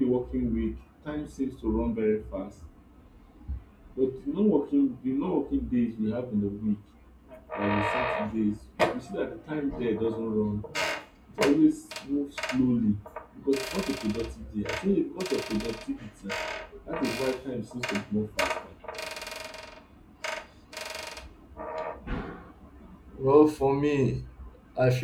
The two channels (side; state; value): both; identical; correlation 1.00